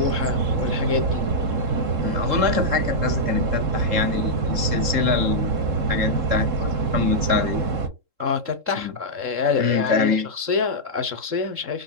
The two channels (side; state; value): left; late; 3.7 ms